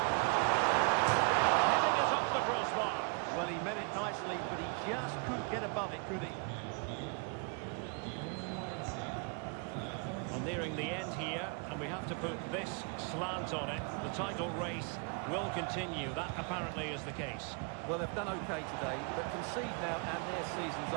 And heading it off the crossbar. Well, he meant it nicely, but he just couldn't get above it, could he? Well, nearing the end here, and we have to put this slant on it. The title race will continue. That apparently is the case. Well, they've done okay today, but concede now and their season's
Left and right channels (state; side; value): quieter; left; 36.0 dB